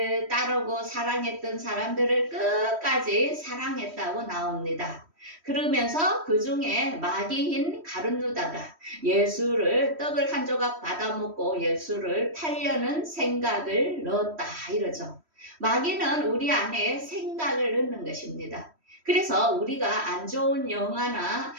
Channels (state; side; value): late; left; 3.1 ms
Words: 따르고 사랑했던 사람들을 끝까지 사랑했다고 나옵니다. 그러면서 그 중에 마귀인 가룟유다가 예수를 떡을 한 조각 받아먹고 예수를 팔려는 생각을 넣었다 이러죠. 마귀는 우리 안에 생각을 넣는 것입니다. 그래서 우리가 안 좋은 영화나